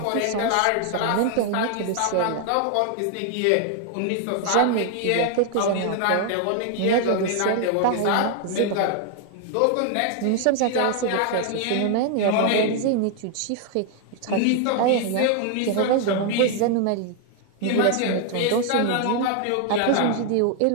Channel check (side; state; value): both; different; correlation 0.00